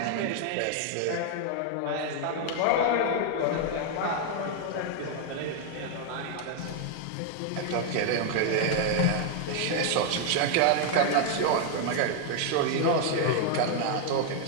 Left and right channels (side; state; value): both; different; correlation 0.00